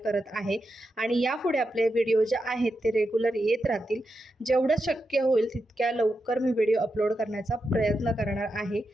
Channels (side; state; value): both; normal; correlation 0.87